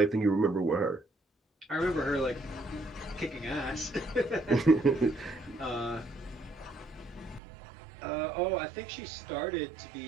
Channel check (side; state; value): left; drops out; at 7.4 s